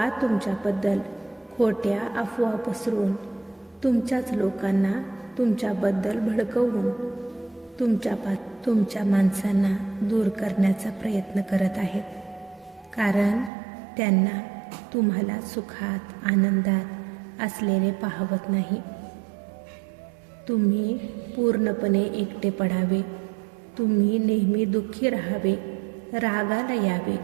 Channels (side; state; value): left; drops out; at 13.5 s